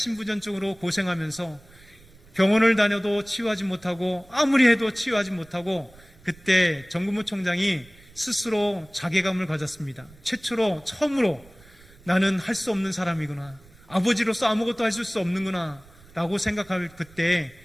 고생하면서 병원을 다녀도 치유하지 못하고 아무리 해도 치유하지 못하고 그때 정근모 총장이 스스로 자괴감을 가졌습니다. 처음으로 나는 할 수 없는 사람이구나, 아버지로서 아무것도 할 수 없는구나 라고 생각할 그때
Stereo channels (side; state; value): right; noise; rumble, 25 dB below the sound